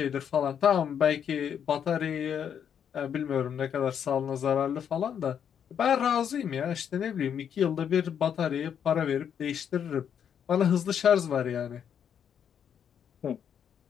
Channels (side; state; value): right; quieter; 8.3 dB